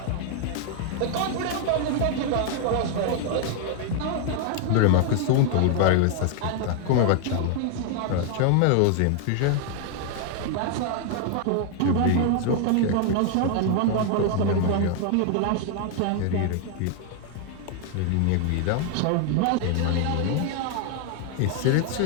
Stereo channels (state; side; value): different; both; correlation 0.00